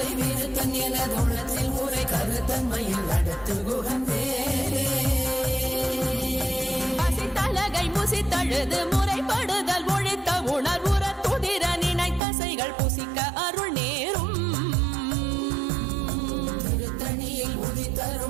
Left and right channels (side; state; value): left; drops out; at 12.2 s